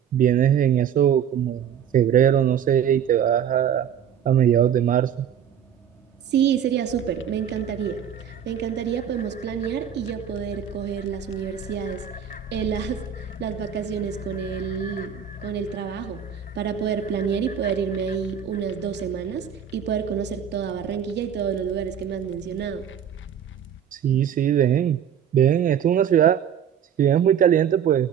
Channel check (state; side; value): quieter; left; 8.8 dB